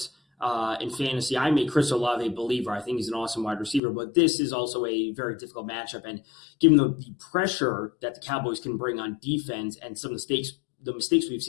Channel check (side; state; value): right; drops out; at 3.8 s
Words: in fantasy. I made Chris Olave a believer. I think he's an awesome wide receiver, but this is also a very difficult matchup. And given the pressure that the Cowboys can bring on defense and some mistakes, the mistakes we've